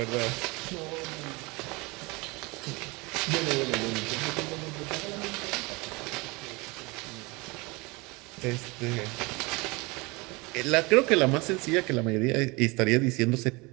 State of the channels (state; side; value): quieter; left; 25.7 dB